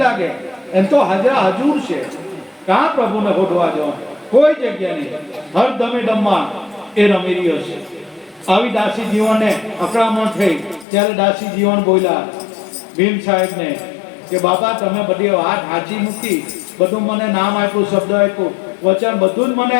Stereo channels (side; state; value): right; drops out; at 10.9 s